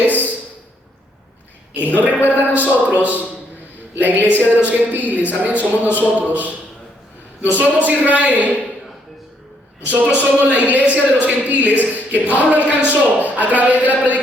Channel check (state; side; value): normal; both; correlation 0.71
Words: Él nos recuerda a nosotros, la iglesia de los gentiles, amén, somos nosotros. No somos Israel, nosotros somos la iglesia de los gentiles que Pablo alcanzó a través de la